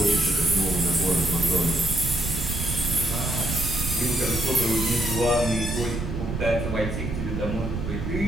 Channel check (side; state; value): right; noise; rumble, 4 dB below the sound